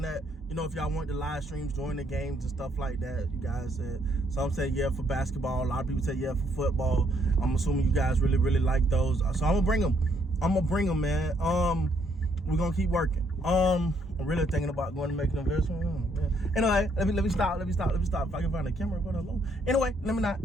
that, if y'all want the live streams during the games and stuff like that. You guys said, some say yeah for basketball. A lot of people say yeah for football. I'm assuming you guys really like those. So I'm gonna bring them. Man. We're gonna keep working. I'm really thinking about going to make an investment. Anyway, let me stop. If I can find a camera, go down low. Anyway, let me not.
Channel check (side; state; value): both; normal; correlation 0.70